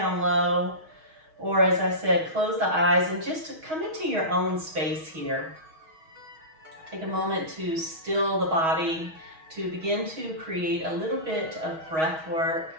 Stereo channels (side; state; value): left; late; 6.3 ms